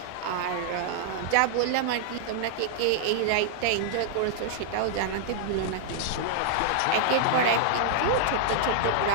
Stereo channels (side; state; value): both; different; correlation -0.01